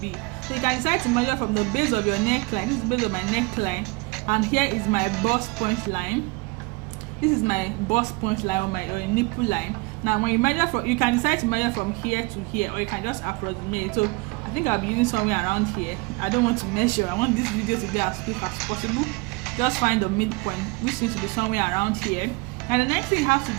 So you can decide to measure from the base of your neckline. This is the base of my neckline, and here is my bust point line. This is my bust point line or my nipple line. Now when you measure from, you can decide to measure from here to here, or you can just approximate. So I think I'll be using somewhere around here. I don't want to measure. I want this video to be as quick as possible. Just find the midpoint, which seems to be somewhere around here. And the next thing you have to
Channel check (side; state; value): left; quieter; 26.0 dB